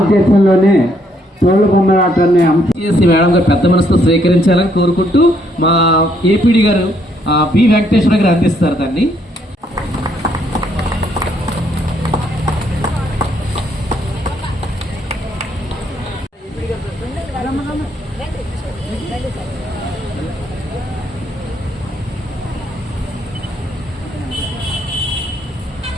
తోలు బొమ్మలాటాన్ని మేడం గారు పెద్ద మనసుతో స్వీకరించాలని కోరుకుంటూ మా ఏపీడీ గారు బి వెంకటేశ్వర గారు అందిస్తారు దాన్ని.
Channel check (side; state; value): both; normal; correlation 0.70